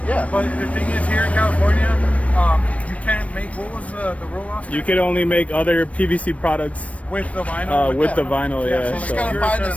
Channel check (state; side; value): late; right; 0.065 ms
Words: Yeah. But the thing is, here in California, you can't make, what was the rule, Oscar? You could only make other PVC products with the vinyl. with the vinyl, Yeah, yeah. so just gotta You're find the a